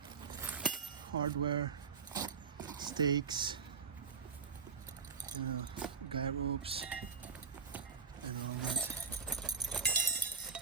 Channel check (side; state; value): left; quieter; 5.6 dB